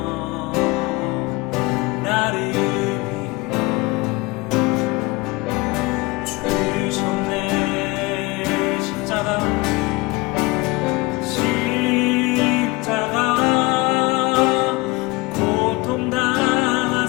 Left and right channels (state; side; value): quieter; right; 23.4 dB